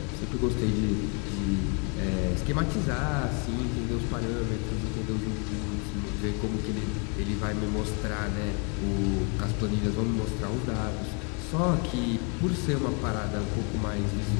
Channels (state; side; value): quieter; right; 36.1 dB